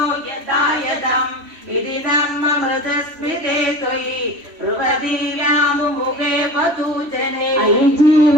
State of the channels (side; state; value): left; late; 3.1 ms